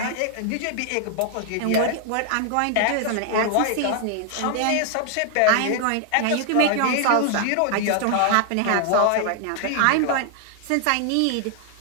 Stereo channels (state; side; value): different; both; correlation 0.00